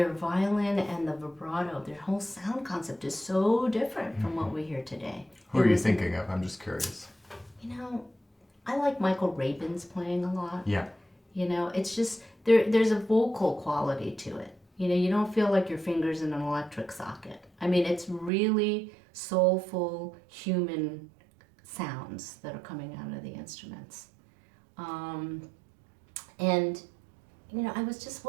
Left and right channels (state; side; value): drops out; left; at 18.3 s